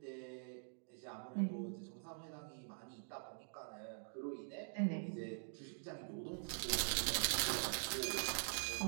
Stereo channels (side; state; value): left; silent; digital silence